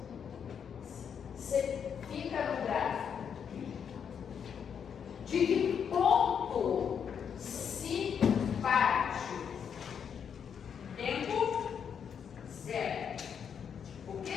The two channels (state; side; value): quieter; right; 7.5 dB